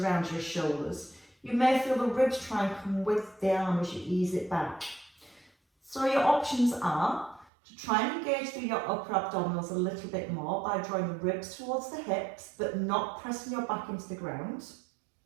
your shoulders, you may feel the ribs try and come with the arm as you ease it back. So your options are to try and engage through your upper abdominals a little bit more by drawing the ribs towards the hips, but not pressing your back into the ground.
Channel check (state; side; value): drops out; left; at 7.5 s